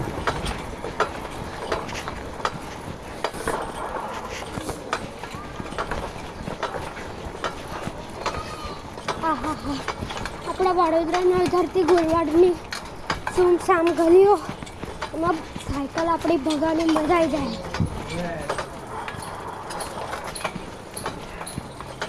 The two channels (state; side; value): identical; both; correlation 1.00